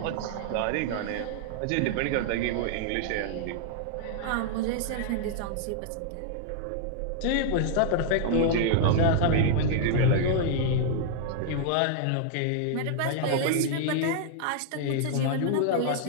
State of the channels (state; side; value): different; both; correlation -0.01